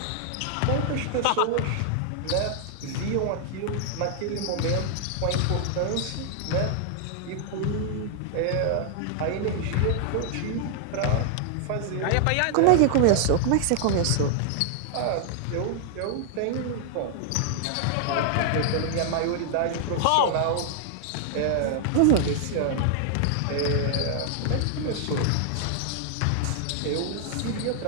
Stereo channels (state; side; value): different; both; correlation 0.00